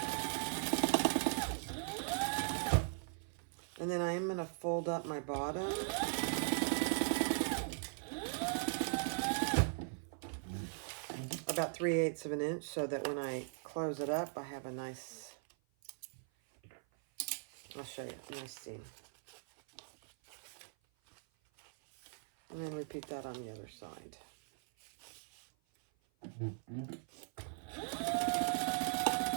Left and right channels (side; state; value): left; silent; 51 dB below the other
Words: And then I'm going to fold up my bottom. About 3/8 of an inch so that when I close it up, I have a nice, I'll show you, a nice seam. And then repeat that on the other side.